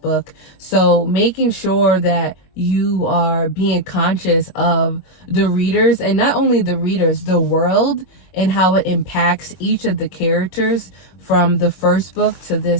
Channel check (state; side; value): late; right; 22 ms